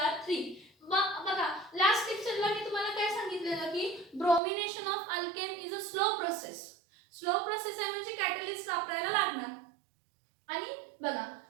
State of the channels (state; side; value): drops out; left; at 4.4 s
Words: बघा लास्ट लेक्चरला मी तुम्हाला काय सांगितलेलं की bromination of alkane is a slow process. Slow process आहे म्हणजे कॅटलिस्ट वापरायला लागणार. आणि बघा